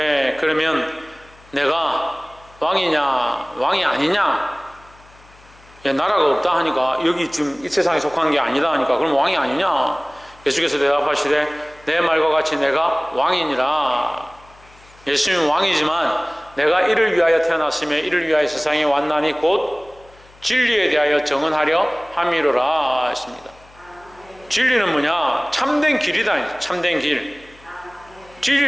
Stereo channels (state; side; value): noise; left; hum, 26 dB below the sound